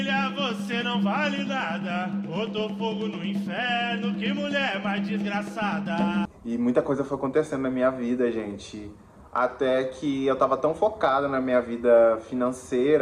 você não vale nada. Botou fogo no inferno, que mulher mais desgraçada. E muita coisa foi acontecendo na minha vida, gente. Até que eu tava tão focado na minha vida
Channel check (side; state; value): both; identical; correlation 1.00